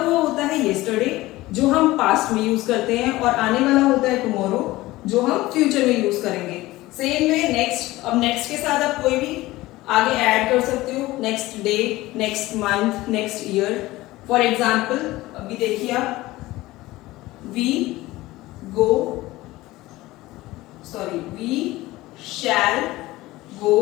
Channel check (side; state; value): right; quieter; 18.3 dB